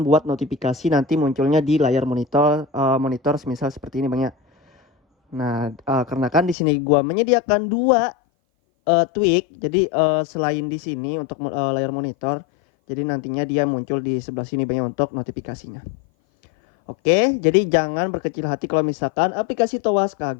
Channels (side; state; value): right; drops out; at 6.6 s